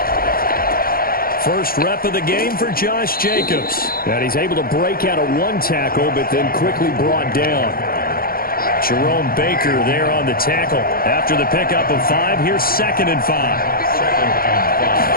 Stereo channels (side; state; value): right; late; 0.43 ms